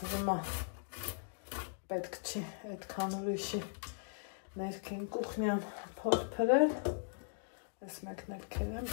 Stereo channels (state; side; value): silent; right; digital silence